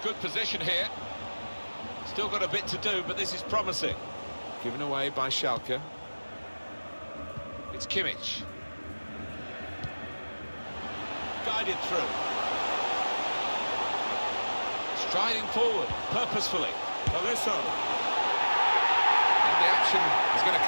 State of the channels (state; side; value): inverted; both; correlation -1.00